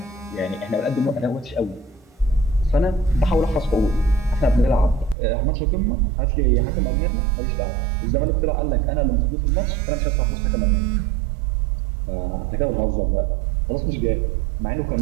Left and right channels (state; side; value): drops out; left; at 5.2 s